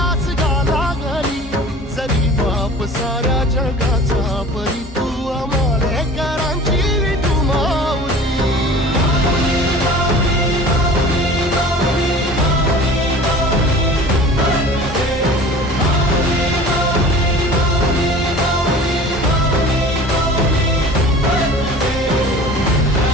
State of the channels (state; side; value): normal; both; correlation 0.42